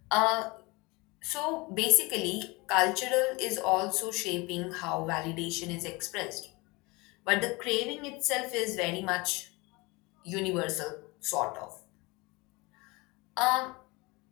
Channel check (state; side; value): quieter; right; 24.8 dB